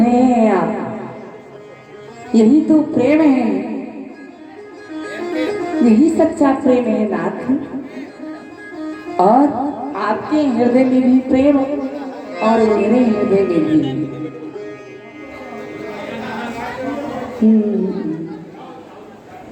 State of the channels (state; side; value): identical; both; correlation 1.00